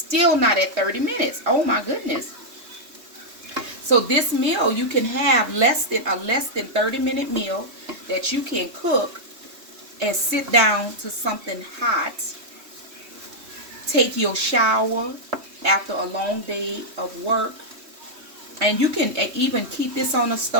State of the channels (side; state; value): left; late; 3.2 ms